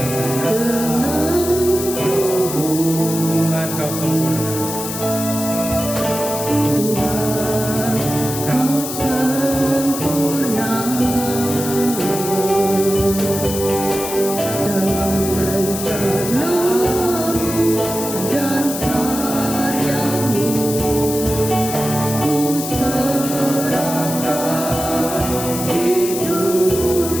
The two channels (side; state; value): left; noise; hiss, 6 dB below the sound